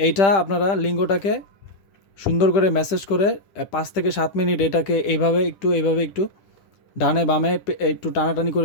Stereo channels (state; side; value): late; right; 10 ms